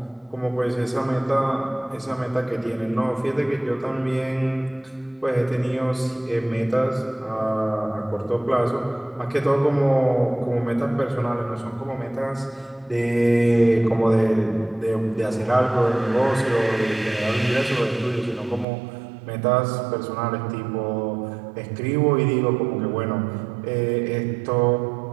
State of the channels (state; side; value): drops out; left; at 18.7 s